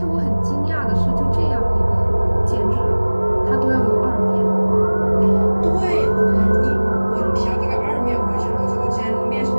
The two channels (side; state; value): both; inverted; correlation -1.00